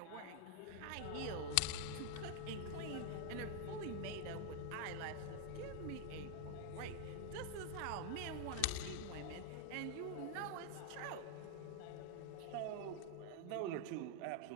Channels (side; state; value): both; different; correlation 0.00